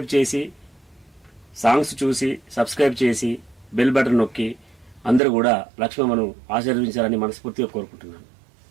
చేసి, సాంగ్స్ చూసి సబ్స్క్రైబ్ చేసి బెల్ బటన్ నొక్కి అందరూ కూడా లక్ష్మమ్మను ఆశీర్వదించాలని మనస్ఫూర్తిగా కోరుకుంటున్నాను.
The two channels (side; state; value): left; drops out; at 5.2 s